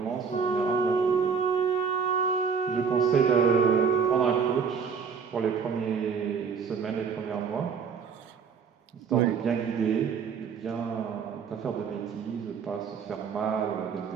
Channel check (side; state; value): left; quieter; 6.2 dB